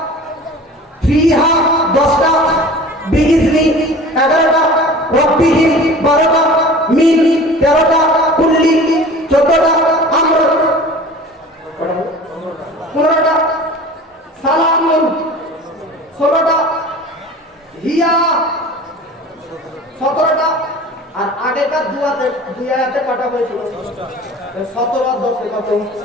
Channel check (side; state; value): both; normal; correlation 0.41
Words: ফিহা 10টা, বিইذনি 11টা, রাব্বিহিম 12টা, মিন 13টা, কুল্লি 14টা, আমর 15টা, সালামুন 16টা, হিয়া 17টা। আর আগেকার দুই আয়াতে কটা হয়েছিল? 17 আর 10 কত?